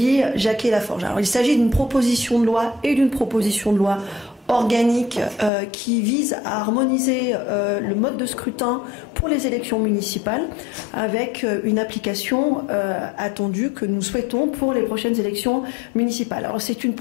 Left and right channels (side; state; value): right; drops out; at 5.5 s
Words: Jacquet-Laforge. Alors, il s'agit d'une proposition de loi et d'une proposition de loi organique qui vise à harmoniser le mode de scrutin pour les élections municipales avec une application attendue que nous souhaitons pour les prochaines élections municipales. Alors c'est une